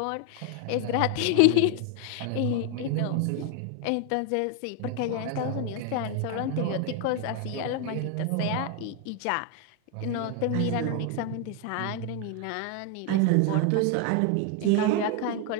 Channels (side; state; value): both; different; correlation 0.01